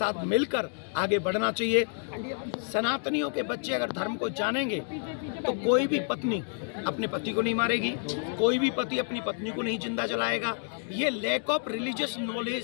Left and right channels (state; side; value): silent; right; 56 dB below the other